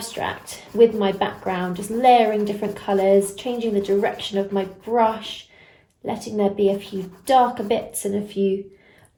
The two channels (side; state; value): both; identical; correlation 1.00